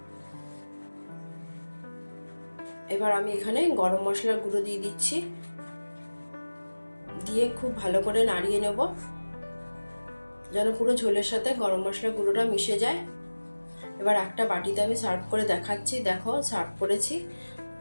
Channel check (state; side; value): inverted; both; correlation -1.00